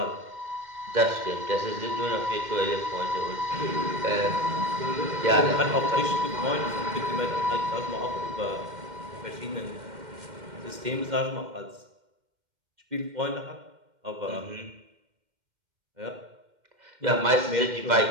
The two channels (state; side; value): late; left; 2.1 ms